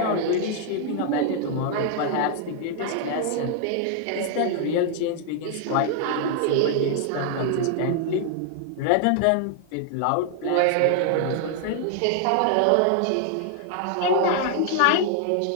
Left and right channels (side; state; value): both; different; correlation 0.00